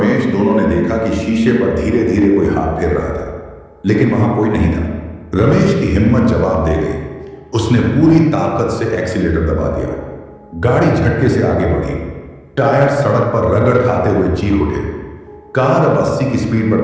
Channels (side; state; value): both; identical; correlation 1.00